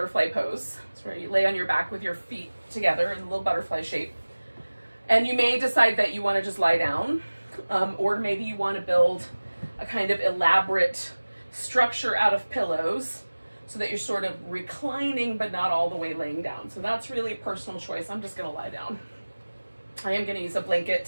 pose. It's where you lay on your back with your feet together in a little butterfly shape. And you may decide that you want to just lie down, or maybe you want to build a kind of elaborate structure out of pillows so that you're sort of reclining but not all the way laying down. So that's really a personal choice. I'm just going to lie down. I am going to use a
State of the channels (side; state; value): both; inverted; correlation -1.00